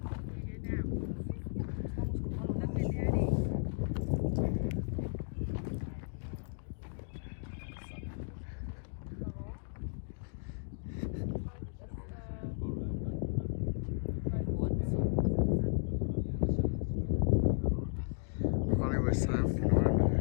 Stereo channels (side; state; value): right; silent; digital silence